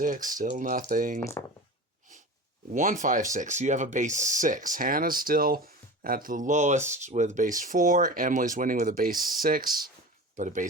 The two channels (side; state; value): both; normal; correlation 0.32